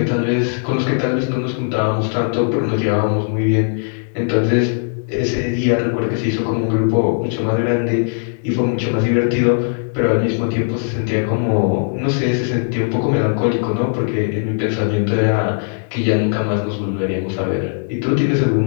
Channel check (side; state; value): right; silent; digital silence